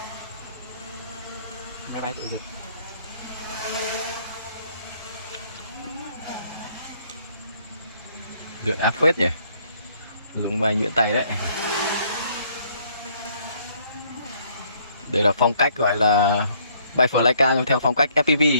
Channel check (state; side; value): inverted; both; correlation -0.65